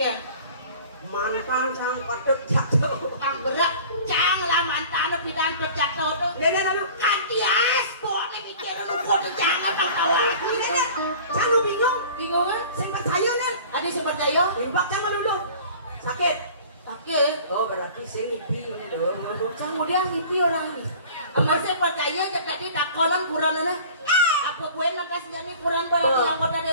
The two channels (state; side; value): inverted; both; correlation -0.45